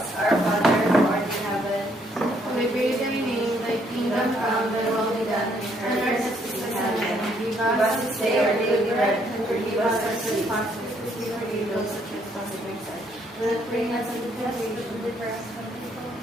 Our Father, who art in heaven, May praise thy name, thy kingdom come, thy will be done, on earth as it is in heaven. give us this day our daily bread, and forgive us our trespasses, as we forgive those who trespass against us. Do not bring us into temptation, but deliver us from evil.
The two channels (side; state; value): both; normal; correlation 0.69